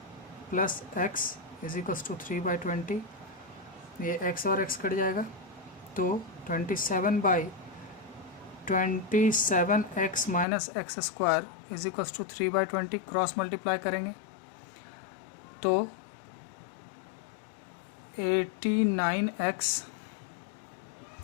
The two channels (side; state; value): right; drops out; at 10.5 s